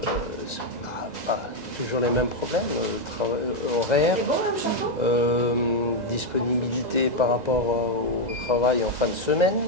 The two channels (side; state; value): left; late; 2.0 ms